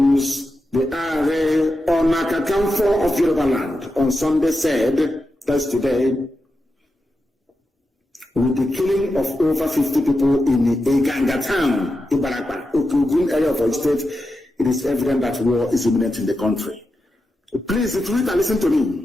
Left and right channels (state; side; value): normal; both; correlation 0.89